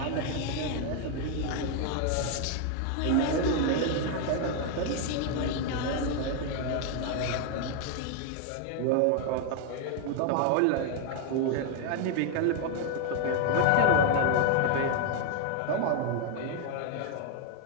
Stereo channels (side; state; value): both; different; correlation 0.00